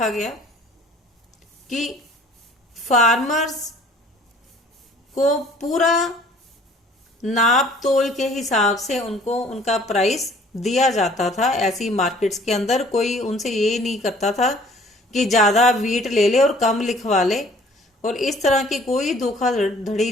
गया कि फार्मर्स को पूरा नाप तोल के हिसाब से उनको उनका प्राइस दिया जाता था। ऐसी मार्केट्स के अंदर कोई उनसे ये नहीं करता था कि ज्यादा वीट ले ले और कम लिखवा ले, और इस तरह की कोई धोखाधड़ी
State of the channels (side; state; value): both; normal; correlation 0.54